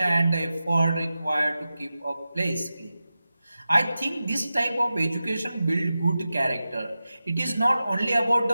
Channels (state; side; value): inverted; both; correlation -0.94